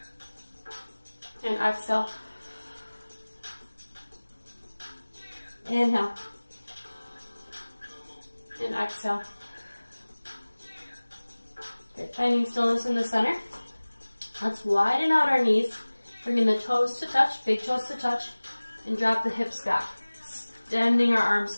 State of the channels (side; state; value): both; inverted; correlation -1.00